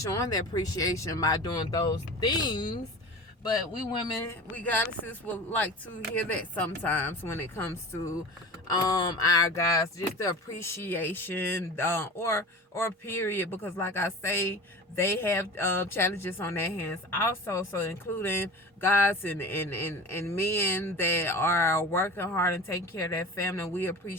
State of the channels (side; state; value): both; normal; correlation 0.34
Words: showing their appreciation by doing those things. But we women, we goddesses, would like to hear that sometimes when it comes to our guys, just the appreciation, or period, because like I say, they have challenges on their hands also. So including guys and men that are working hard and taking care of their family, we